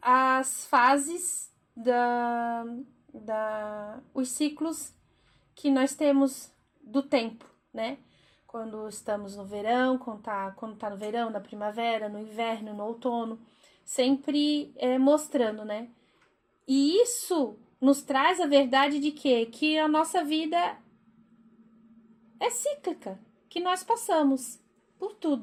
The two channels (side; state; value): both; identical; correlation 1.00